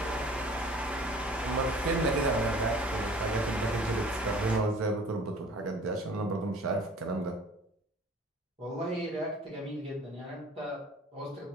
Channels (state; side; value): normal; both; correlation 0.48